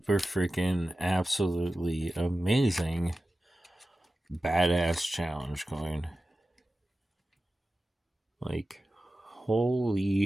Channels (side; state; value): both; normal; correlation 0.94